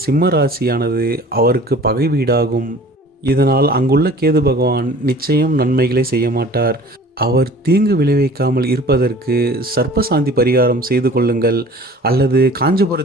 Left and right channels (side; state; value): both; normal; correlation 0.46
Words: சிம்ம ராசியானது அவருக்கு பகை வீடாகும். இதனால் அங்குள்ள கேது பகவான் நிச்சயம் நன்மைகளை செய்ய மாட்டார். அவர் தீங்கு விளைவிக்காமல் இருப்பதற்கு சர்ப்பசாந்தி பரிகாரம் செய்து கொள்ளுங்கள். அல்லது